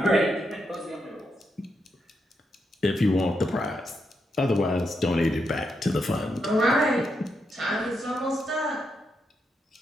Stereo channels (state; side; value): normal; both; correlation 0.82